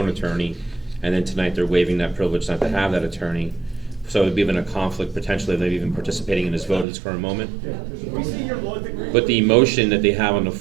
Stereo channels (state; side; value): drops out; left; at 6.9 s